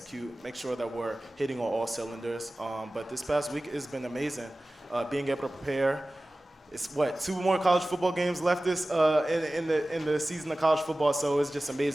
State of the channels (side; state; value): both; normal; correlation 0.97